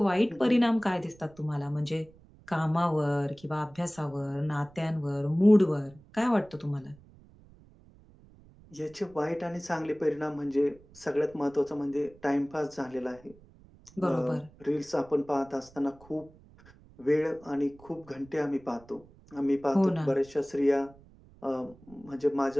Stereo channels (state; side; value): noise; right; rumble, 25 dB below the sound